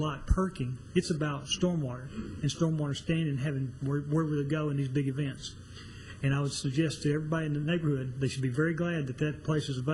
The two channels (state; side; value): identical; both; correlation 1.00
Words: perking. It's about stormwater and stormwater standing and having where would it go in these big events. And I would suggest to everybody in the neighborhood they should be very glad that that place is